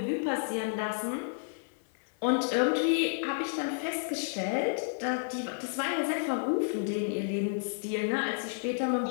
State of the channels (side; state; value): right; silent; 57 dB below the other